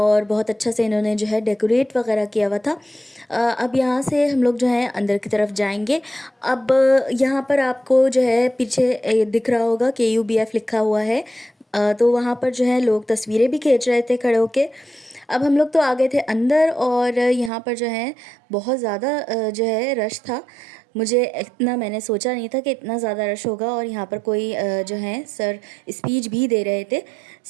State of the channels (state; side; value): drops out; left; at 17.5 s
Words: बहुत अच्छा से इन्होंने जो है डेकोरेट वगैरह किया हुआ था। अब यहाँ से हम लोग जो है अंदर की तरफ जाएंगे। अब यहाँ पर आपको जो है पीछे दिख रहा होगा KUBF लिखा हुआ है। तो वहाँ पर जो है लोग तस्वीरें भी खींच रहे थे खड़े होके। अब हम लोग तो आ गए थे अंदर और यहाँ पर जो है बहुत ज़्यादा जो है रश था। मुझे इतना मैंने सोचा नहीं था कि इतना ज़्यादा रश होगा। और यहाँ पर कोई जो है सर स्पीच भी दे रहे थे